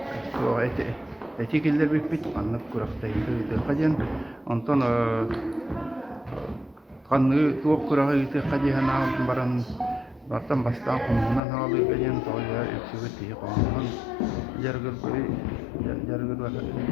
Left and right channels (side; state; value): right; drops out; at 11.4 s